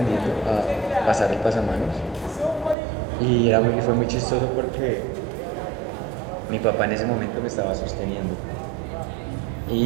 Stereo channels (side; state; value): left; drops out; at 2.8 s